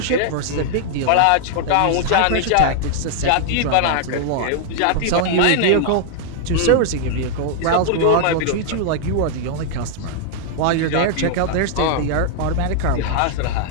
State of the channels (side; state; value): both; different; correlation 0.00